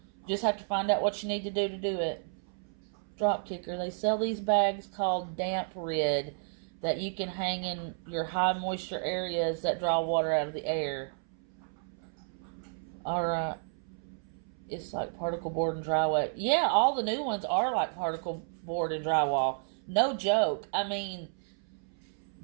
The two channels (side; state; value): left; silent; 57 dB below the other